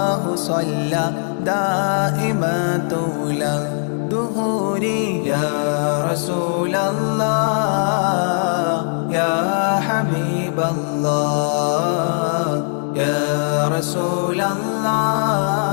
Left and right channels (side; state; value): right; silent; digital silence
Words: صلى دائما طول دهوري يا رسول الله يا حبيب الله يا رسول